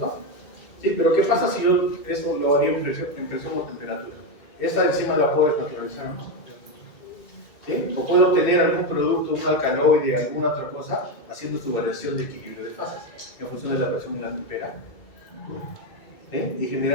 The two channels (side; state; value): right; late; 2.2 ms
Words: Sí, pero ¿qué pasa si yo eso lo haría en presión o temperatura? Esa enzima la puedo desnaturalizar, ¿no? ¿Sí? O puedo obtener algún producto, un alcaloide, alguna otra cosa, haciendo su variación de equilibrio de fases en función de la presión y la temperatura. ¿Sí? Y